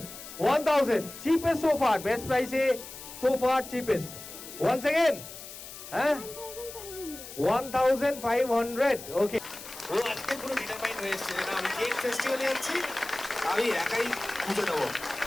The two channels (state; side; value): noise; left; hiss, 13 dB below the sound